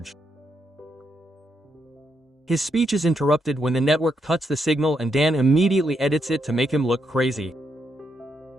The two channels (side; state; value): both; normal; correlation 0.79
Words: His speech is interrupted when the network cuts the signal and Dan immediately edits it to make him look crazy.